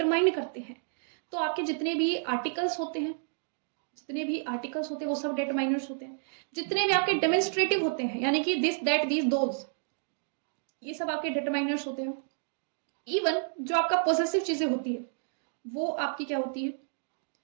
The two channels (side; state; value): left; silent; digital silence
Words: करते हैं। तो आपके जितने भी आर्टिकल्स होते हैं, वो सब डिटरमाइनर्स होते हैं। जितने भी आपके डेमोन्स्ट्रेटिव होते हैं, यानी कि दिस दैट दीज दोज, ये सब आपके डिटरमाइनर्स होते हैं। इवन जो आपका पॉसेसिव चीजें होती है वो आपकी क्या होती है,